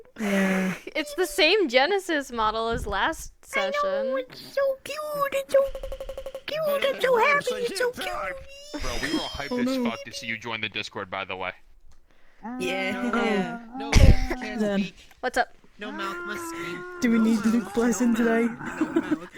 Yeah. It's the same Genesis model as last session. It's so cute. It's so cute. I'm so happy. It's so cute. Bro, we were all hyped Oh, as no. fuck to see you join the Discord, by the way. Yeah. No, can't Then. speak. What's up? No mouth must scream. Do we need Luke Blessing today?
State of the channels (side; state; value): both; identical; correlation 1.00